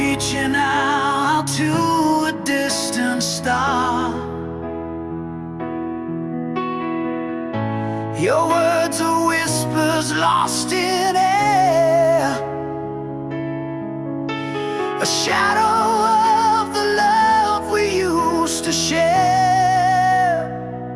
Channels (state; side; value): identical; both; correlation 1.00